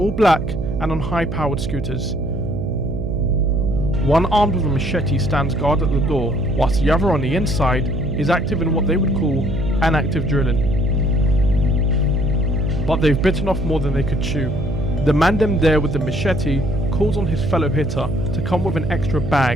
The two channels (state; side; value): noise; right; hum, 5 dB below the sound